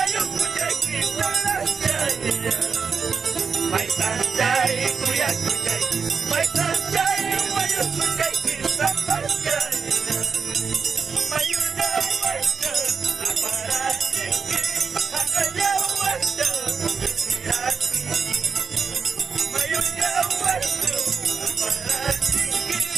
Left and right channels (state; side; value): quieter; left; 5.7 dB